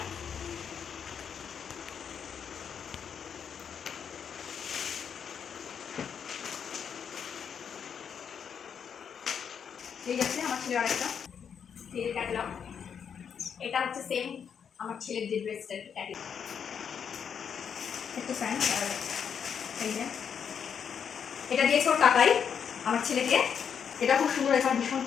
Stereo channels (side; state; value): right; quieter; 7.4 dB